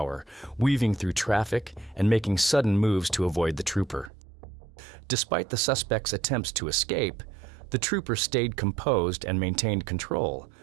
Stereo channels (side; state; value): left; drops out; at 4.1 s